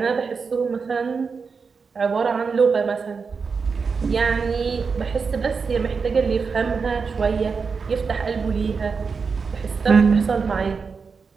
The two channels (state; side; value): quieter; left; 5.2 dB